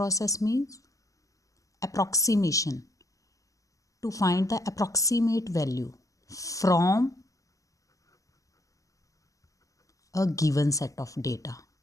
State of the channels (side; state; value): right; late; 0.16 ms